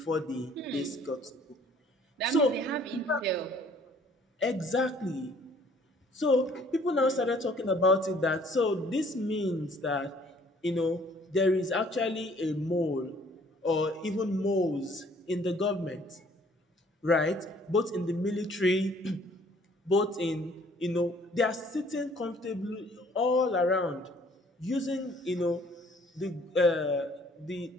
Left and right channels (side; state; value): both; normal; correlation 0.58